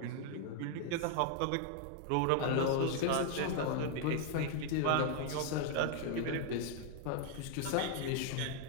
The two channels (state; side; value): different; both; correlation 0.00